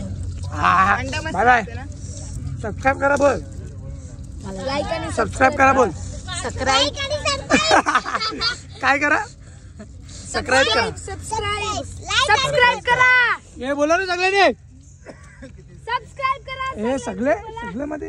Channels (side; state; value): both; identical; correlation 1.00